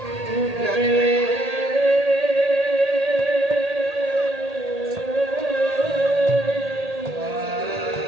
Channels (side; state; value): left; late; 1.8 ms